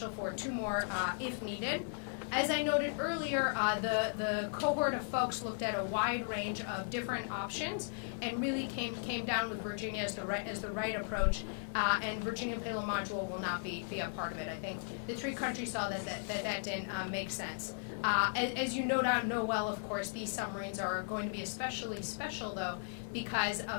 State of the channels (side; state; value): right; silent; digital silence